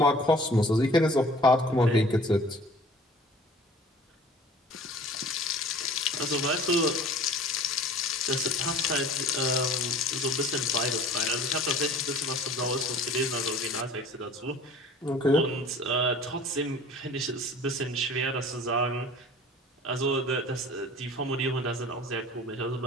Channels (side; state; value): both; normal; correlation 0.46